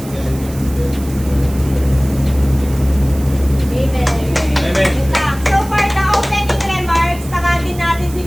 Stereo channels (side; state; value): right; noise; hiss, 17 dB below the sound